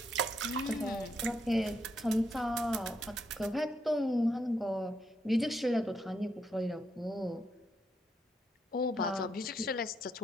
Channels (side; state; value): both; normal; correlation 0.78